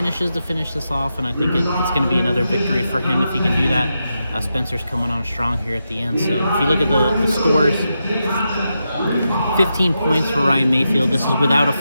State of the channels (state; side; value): inverted; both; correlation -0.86